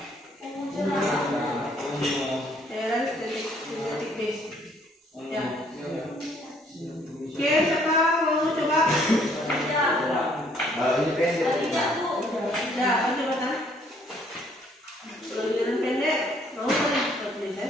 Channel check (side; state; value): both; normal; correlation 0.64